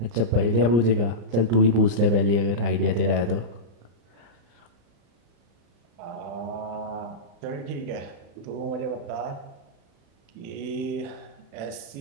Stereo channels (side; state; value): left; late; 34 ms